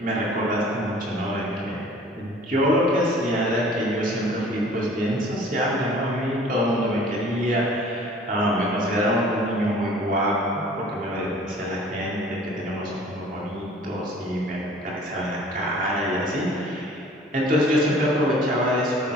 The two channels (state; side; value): normal; both; correlation 0.50